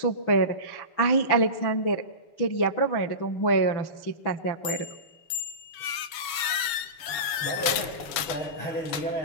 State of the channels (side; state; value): right; late; 7.0 ms